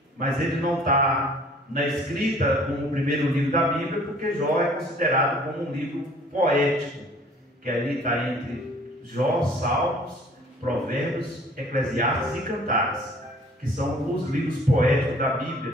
mas ele não está na escrita como o primeiro livro da Bíblia, porque Jó é considerado como um livro poético, que ali está entre Jó, Salmos, Provérbios, Eclesiastes e Cantares, que são os livros poéticos da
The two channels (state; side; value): normal; both; correlation 0.53